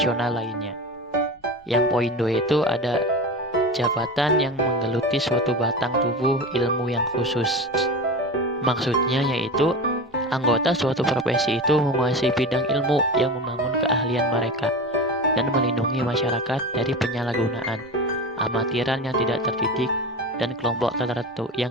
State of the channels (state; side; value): normal; both; correlation 0.28